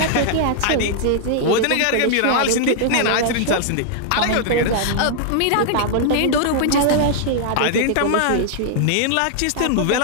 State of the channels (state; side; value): different; both; correlation -0.01